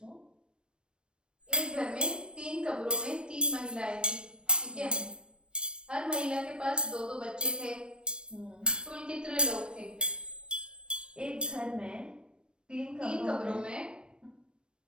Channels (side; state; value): left; late; 0.054 ms